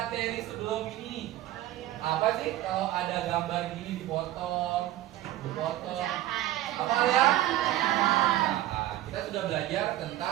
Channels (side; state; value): left; quieter; 14.5 dB